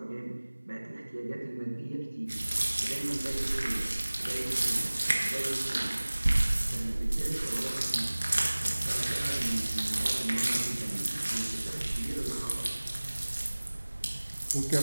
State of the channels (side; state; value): both; inverted; correlation -1.00